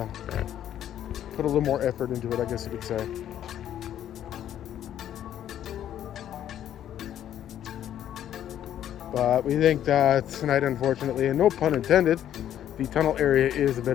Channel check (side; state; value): right; quieter; 10.9 dB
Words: put a little more effort into it, I guess you could say. But we think that tonight, unfortunately, and no pun intended, the tunnel area is a